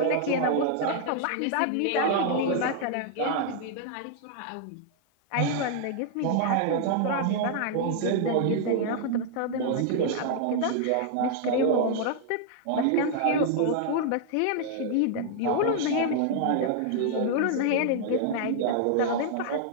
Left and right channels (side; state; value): both; different; correlation 0.00